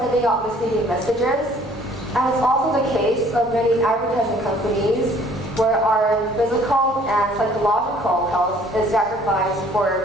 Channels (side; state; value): both; normal; correlation 0.56